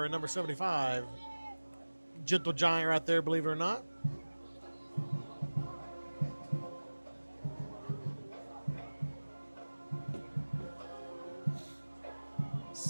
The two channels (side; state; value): both; inverted; correlation -1.00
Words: number 75. Gentle giant right there, believe it or not.